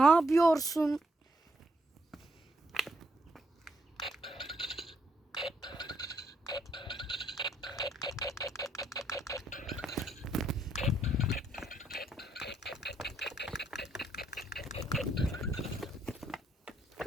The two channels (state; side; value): normal; both; correlation 0.74